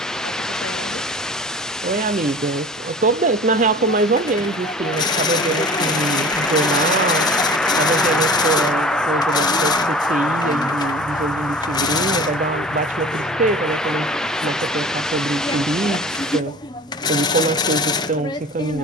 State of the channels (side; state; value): both; normal; correlation 0.42